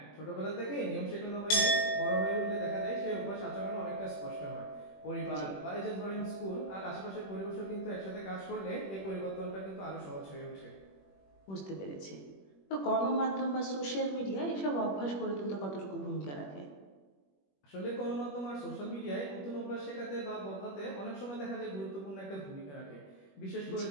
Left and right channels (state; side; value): late; right; 21 ms